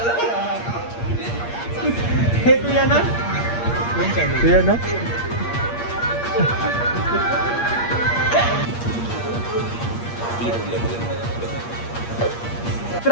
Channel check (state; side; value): late; right; 8.5 ms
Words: हे तू येणार? तू येणार?